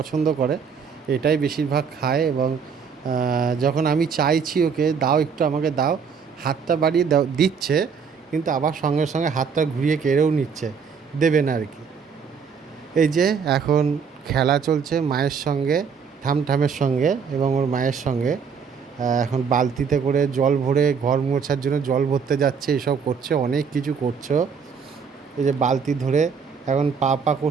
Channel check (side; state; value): left; quieter; 6.2 dB